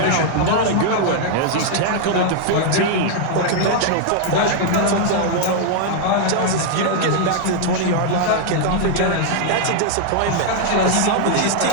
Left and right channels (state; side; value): different; both; correlation 0.00